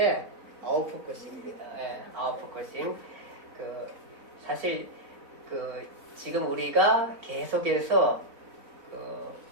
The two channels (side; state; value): left; late; 4.0 ms